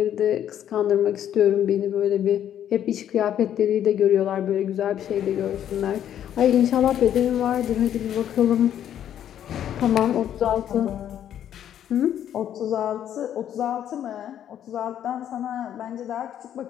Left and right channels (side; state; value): right; quieter; 10.4 dB